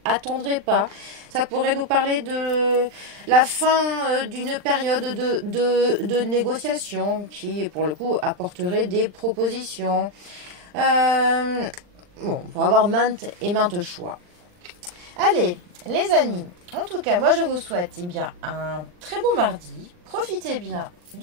attendrait pas. Ça pourrait nous parler de la fin d'une période de négociation qui, pour le coup, apporterait des propositions. Bon, pour avoir maintes et maintes choix. Allez, les amis, en tout cas, moi je vous souhaite bien un très bon mardi. Profitez bien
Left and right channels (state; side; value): late; left; 40 ms